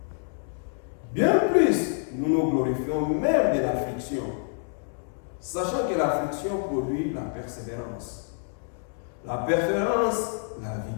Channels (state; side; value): silent; right; 60 dB below the other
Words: Bien plus, nous nous glorifions même de l'affliction, sachant que l'affliction produit la persévérance. La persévérance, la